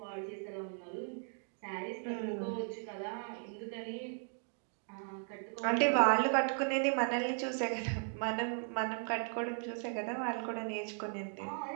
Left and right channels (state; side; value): silent; left; 53 dB below the other